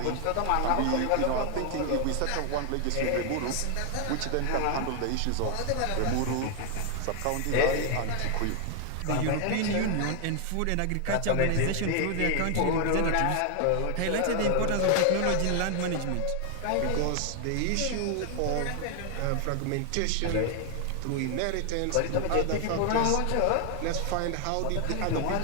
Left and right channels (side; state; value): both; different; correlation 0.00